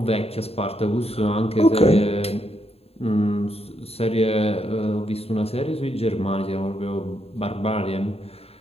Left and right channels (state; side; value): late; right; 0.29 ms